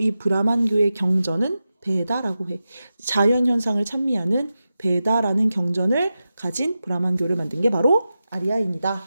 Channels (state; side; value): inverted; both; correlation -0.92